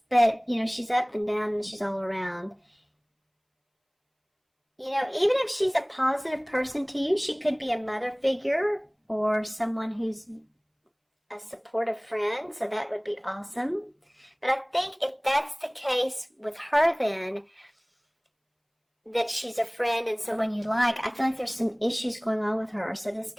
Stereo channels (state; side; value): identical; both; correlation 1.00